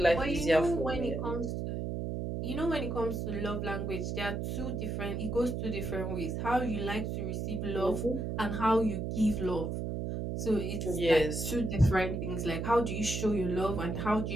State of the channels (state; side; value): noise; right; hum, 3 dB below the sound